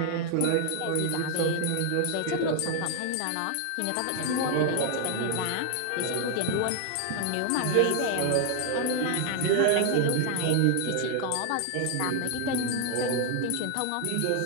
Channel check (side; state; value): both; different; correlation 0.00